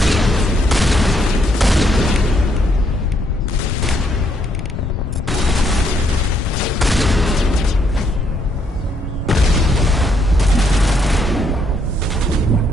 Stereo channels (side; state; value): both; normal; correlation 0.73